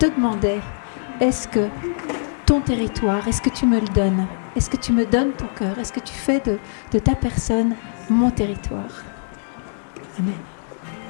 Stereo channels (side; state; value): right; silent; digital silence